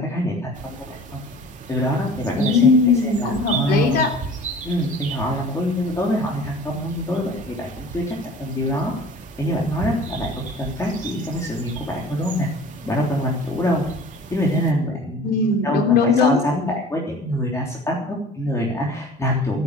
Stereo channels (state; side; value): normal; both; correlation 0.44